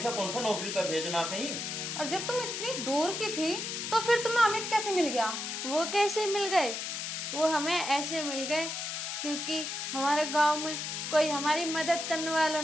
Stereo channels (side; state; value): left; noise; hiss, 4 dB below the sound